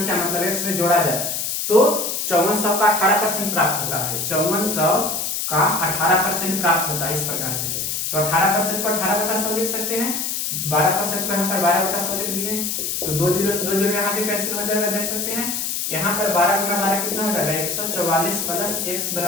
मतलब x में जोड़ा जाए तो 5400 का 18% प्राप्त होता है। 5400 का 18% प्राप्त होता है इस प्रकार से। तो 18% को 18/100 लिख सकते हैं, 12% को यहाँ पर 12/100 लिख दिए, तो 2 जीरो से 2 जीरो यहाँ भी कैंसिल हो जाएगा, देख सकते हैं। यहाँ पर 12 गुना 12 कितना हो जाएगा 144 प्लस x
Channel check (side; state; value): left; noise; hiss, 2 dB below the sound